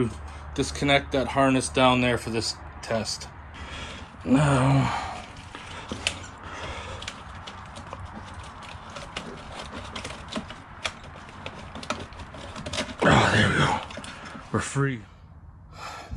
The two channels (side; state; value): both; identical; correlation 1.00